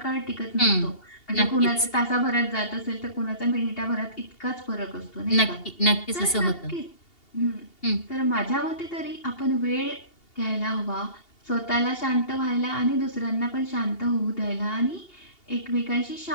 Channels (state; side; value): late; right; 2.8 ms